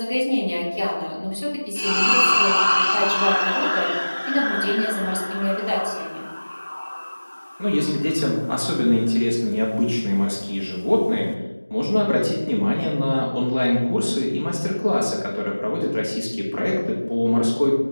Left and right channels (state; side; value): inverted; both; correlation -1.00